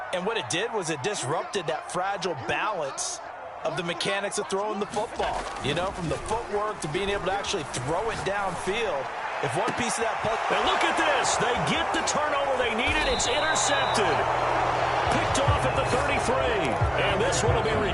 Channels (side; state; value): both; identical; correlation 1.00